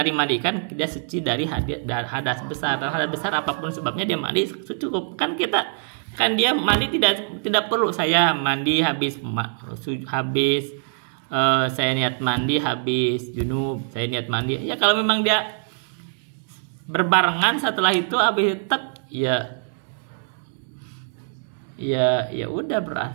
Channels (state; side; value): silent; left; digital silence